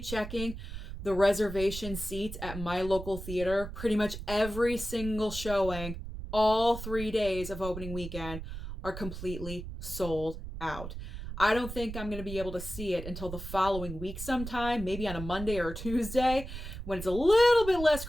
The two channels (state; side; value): noise; right; rumble, 9 dB below the sound